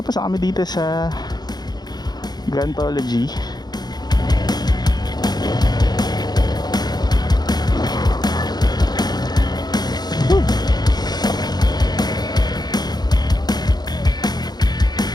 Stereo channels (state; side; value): late; right; 0.20 ms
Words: na kami dito sa Guntology.